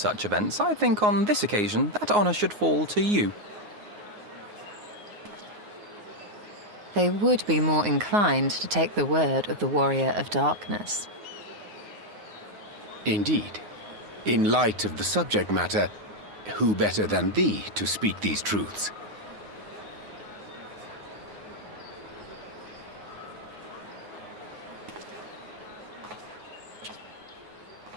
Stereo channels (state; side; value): late; left; 9.5 ms